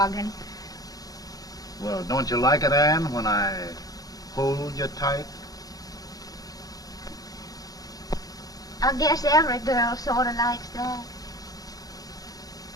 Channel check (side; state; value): right; late; 0.18 ms